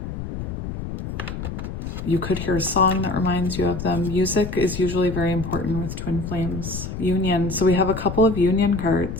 you could hear a song that reminds you of them. Music is usually very important with twin flames. Union. So we have a couple of union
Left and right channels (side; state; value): left; noise; rumble, 7 dB below the sound